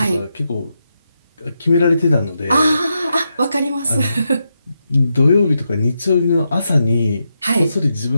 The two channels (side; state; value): both; inverted; correlation -0.85